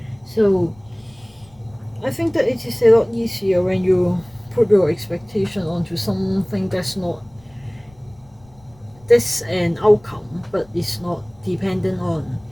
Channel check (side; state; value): left; noise; rumble, 28 dB below the sound